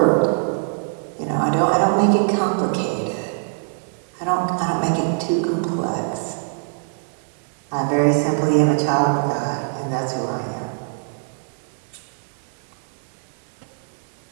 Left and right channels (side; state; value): left; silent; 64 dB below the other